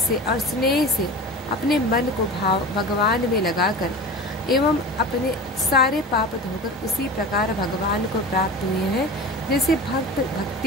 और स्नेह से अपने मन को भगवान में लगाकर एवं अपने सारे पाप धोकर उसी प्रकार भगवान को प्राप्त हुए हैं जैसे भक्त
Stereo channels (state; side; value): normal; both; correlation 0.33